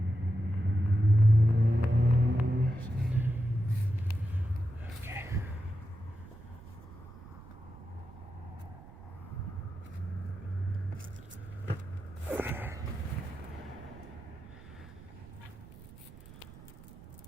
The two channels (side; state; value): right; noise; rumble, 18 dB below the sound